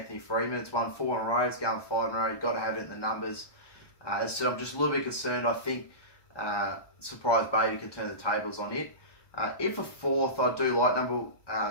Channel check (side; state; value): right; late; 1.2 ms